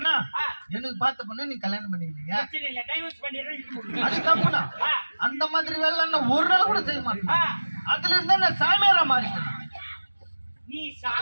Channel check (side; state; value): both; inverted; correlation -1.00